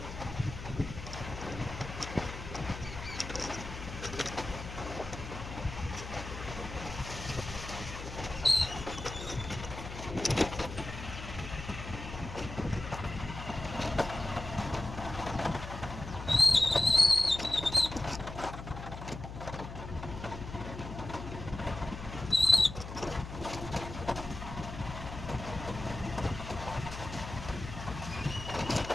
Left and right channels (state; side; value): noise; left; hum, 9 dB below the sound